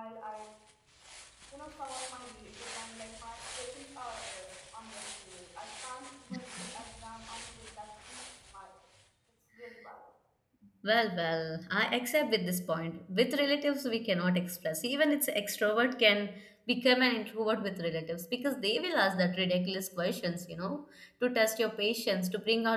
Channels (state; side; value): identical; both; correlation 1.00